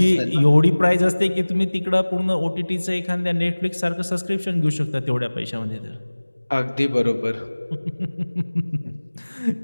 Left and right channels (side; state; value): both; inverted; correlation -1.00